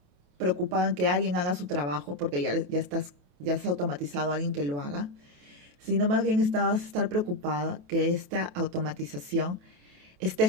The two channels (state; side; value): late; left; 28 ms